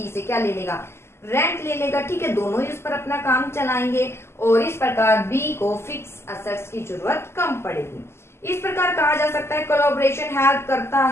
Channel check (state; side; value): late; right; 0.12 ms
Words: से क्या ले लेगा, रेंट ले लेगा, ठीक है, दोनों ही उस पर अपना काम चलाएंगे, और इस प्रकार बी को फिक्स असेट्स की जरूरत कम पड़ेगी। इस प्रकार कहा जा सकता है कोलैबोरेशन हेल्प करता